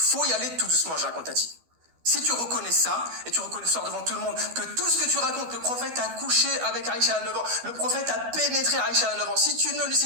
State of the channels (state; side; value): late; left; 12 ms